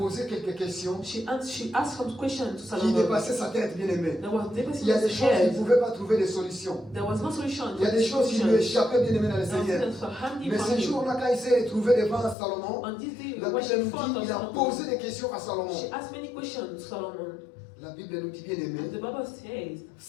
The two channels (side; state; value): right; drops out; at 12.4 s